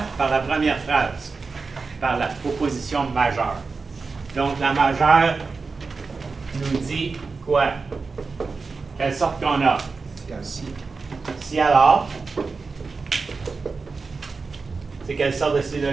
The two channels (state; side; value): quieter; left; 4.4 dB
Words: Par la première phrase, par la proposition majeure. Donc la majeure nous dit quoi? Quelle sorte qu'on a? Si alors. C'est quelle sorte de